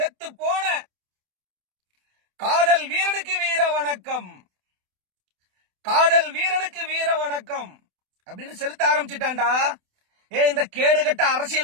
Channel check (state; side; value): late; left; 28 ms